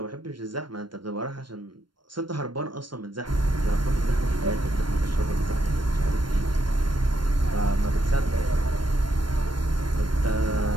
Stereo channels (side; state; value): left; late; 0.72 ms